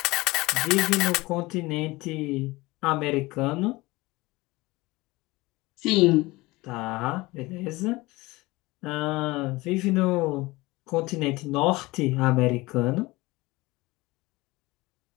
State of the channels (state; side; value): quieter; right; 21.4 dB